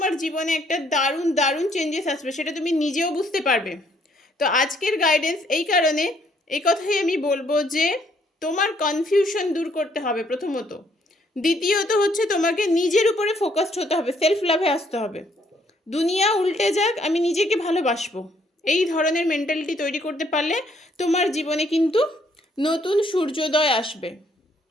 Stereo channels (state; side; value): normal; both; correlation 0.68